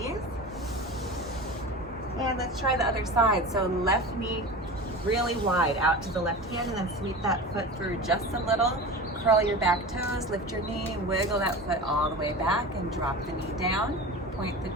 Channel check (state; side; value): normal; both; correlation 0.31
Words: And let's try the other side. So left knee really wide out to the left hand, and then sweep that foot through just a little. Curl your back toes, lift your knee, wiggle that foot all the way back and drop the knee down. Point the